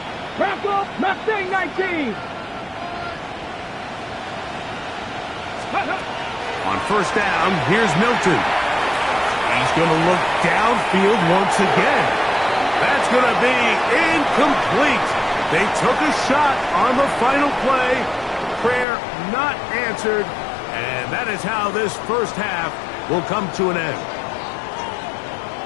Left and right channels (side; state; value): right; drops out; at 18.9 s